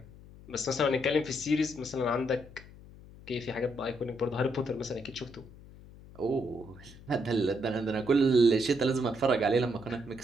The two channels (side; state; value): left; noise; hum, 19 dB below the sound